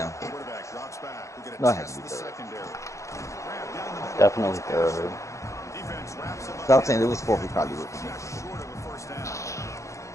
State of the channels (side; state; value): right; late; 0.15 ms